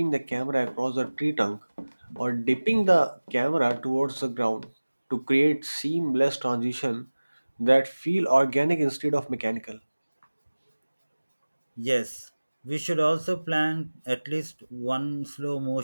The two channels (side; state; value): both; inverted; correlation -1.00